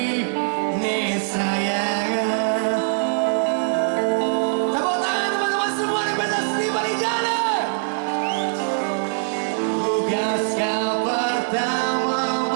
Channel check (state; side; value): silent; left; 59 dB below the other